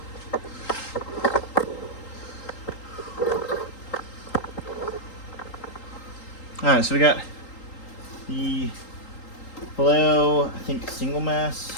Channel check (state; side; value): late; right; 3.8 ms